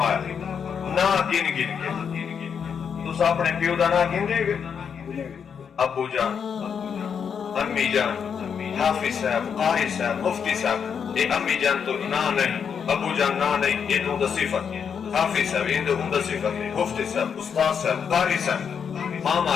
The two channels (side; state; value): right; quieter; 7.0 dB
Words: نہ گن گن کے۔ تو اپنے پیو دا نہ گن دے گے، ابو جان، امی جان، حافظ صاحب، قاری صاحب، مفتی صاحب، یہ امی جان تو نہ نہیں، ابو جان نہ نہیں، یہ تو دا صفت ہے، حافظ صاحب یہ تو دا صفت ہے، مفتی صاحب، استاد صاحب، قاری صاحب، ماما،